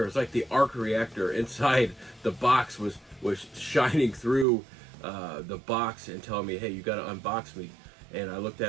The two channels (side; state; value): left; drops out; at 4.5 s